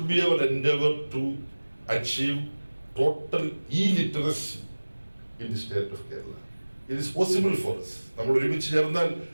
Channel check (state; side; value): inverted; both; correlation -1.00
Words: be our endeavor to achieve total illiteracy in the state of Kerala. It is possible for us. നമ്മൾ ഒരുമിച്ച് ചേർന്നാൽ